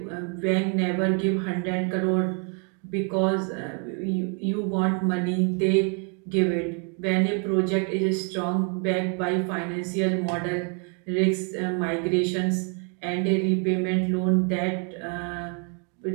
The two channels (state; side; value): quieter; left; 38.7 dB